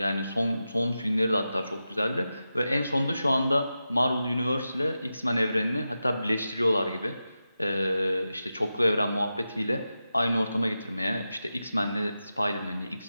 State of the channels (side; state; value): both; inverted; correlation -0.91